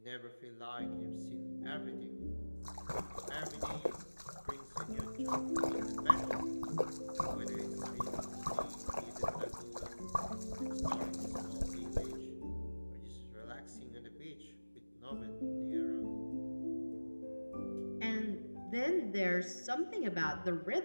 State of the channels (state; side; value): inverted; both; correlation -1.00